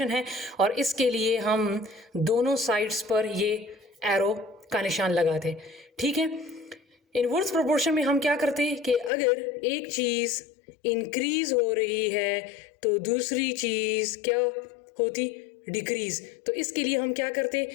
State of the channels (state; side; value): drops out; right; at 9.1 s